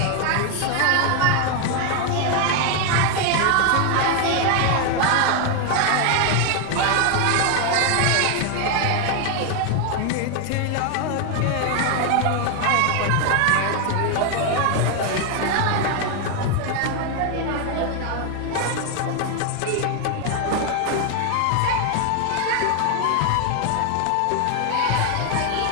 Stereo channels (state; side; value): different; both; correlation 0.01